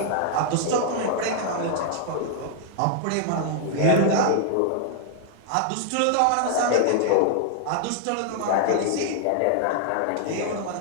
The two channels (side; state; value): both; different; correlation 0.00